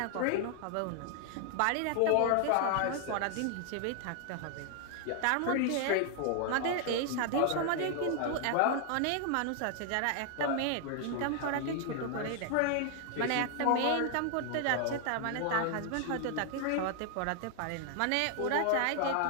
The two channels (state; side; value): different; both; correlation 0.00